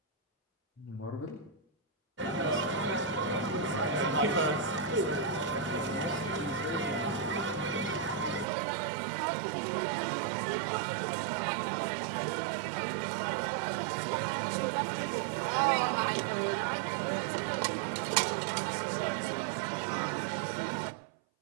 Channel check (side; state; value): left; drops out; at 8.5 s